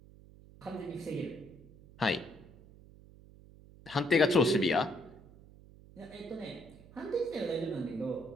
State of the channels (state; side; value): noise; right; hum, 21 dB below the sound